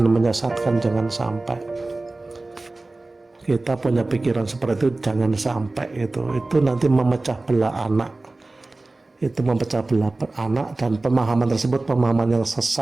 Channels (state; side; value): quieter; left; 3.1 dB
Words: menyesatkan. Jangan sampai kita punya pikiran seperti itu, jangan sampai. Itu nanti memecah belah anak, itu memecah belah anak, dan pemahaman tersebut pemahaman yang